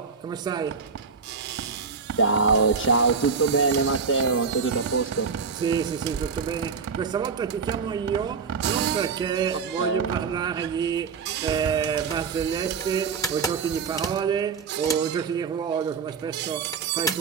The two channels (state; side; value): quieter; left; 5.5 dB